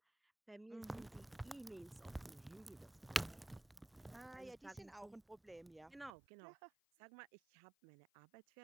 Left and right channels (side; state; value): left; drops out; at 6.1 s